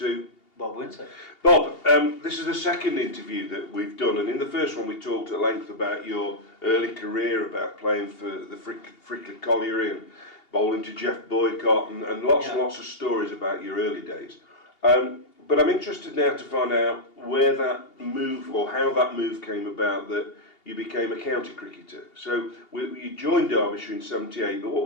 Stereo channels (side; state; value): right; late; 2.8 ms